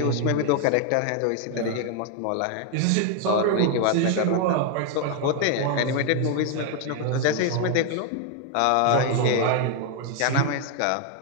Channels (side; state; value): both; different; correlation 0.00